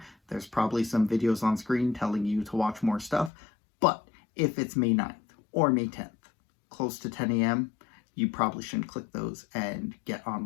There's probably some videos on screen telling you to watch more stuff. But if it's May 9th or May 10th, close to 10 a.m., you probably shouldn't click those and get on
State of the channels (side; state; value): right; drops out; at 3.3 s